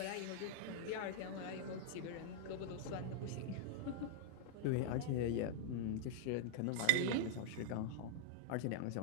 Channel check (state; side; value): different; both; correlation -0.01